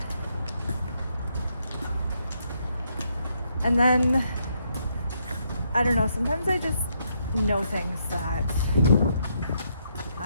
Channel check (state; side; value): inverted; both; correlation -0.76